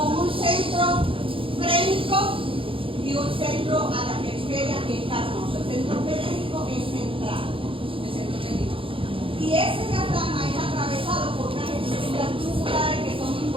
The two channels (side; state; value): left; late; 0.26 ms